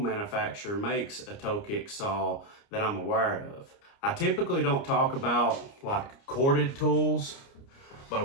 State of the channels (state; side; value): late; right; 29 ms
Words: makes a toe kick saw that I'm aware of. I typically don't talk about like corded tools, but